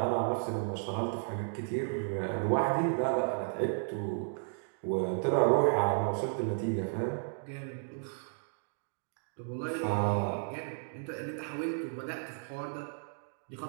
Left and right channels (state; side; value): silent; left; digital silence